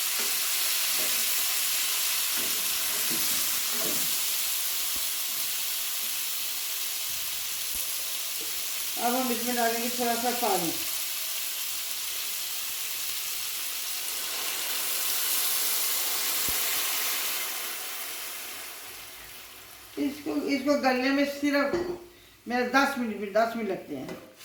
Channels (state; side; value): identical; both; correlation 1.00